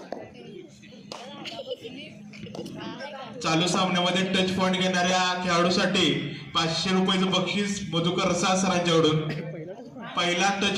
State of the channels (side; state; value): both; identical; correlation 1.00